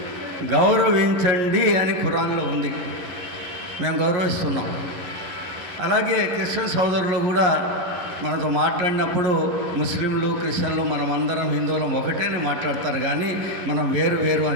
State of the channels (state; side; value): late; left; 11 ms